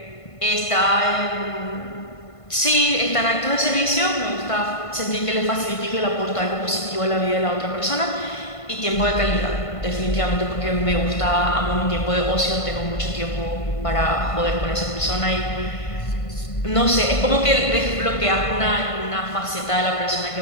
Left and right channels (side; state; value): right; late; 1.5 ms